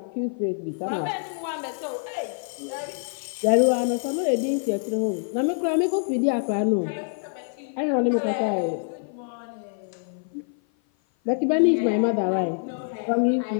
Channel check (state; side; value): silent; right; 55 dB below the other